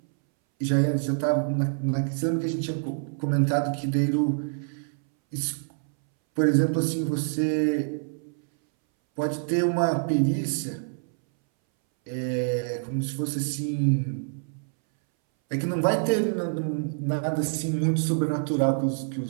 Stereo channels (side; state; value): left; silent; 61 dB below the other